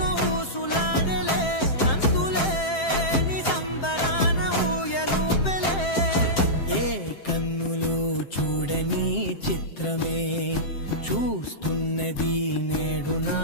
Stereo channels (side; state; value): right; late; 7.6 ms